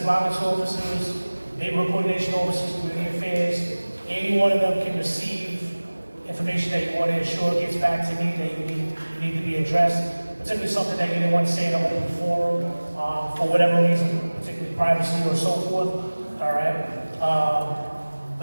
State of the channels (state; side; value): inverted; both; correlation -1.00